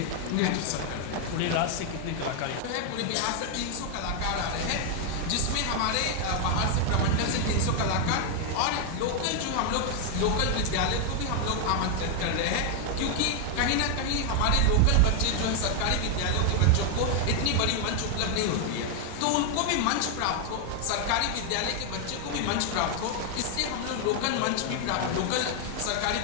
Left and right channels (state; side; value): different; both; correlation 0.00